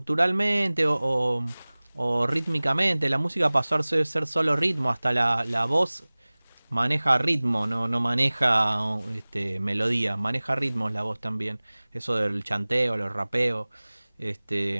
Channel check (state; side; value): inverted; both; correlation -1.00